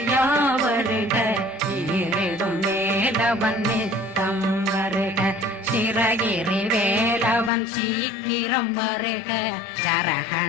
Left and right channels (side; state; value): right; drops out; at 7.5 s